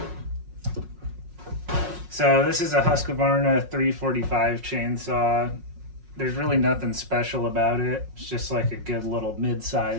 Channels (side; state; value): left; late; 5.5 ms